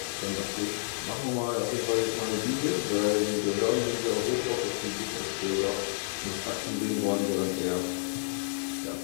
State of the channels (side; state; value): right; silent; 58 dB below the other